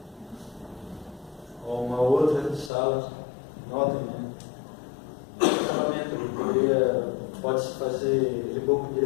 Ou uma outra sala, notem, né? Acabamento, pode-se fazer reboco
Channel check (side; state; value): right; drops out; at 2.7 s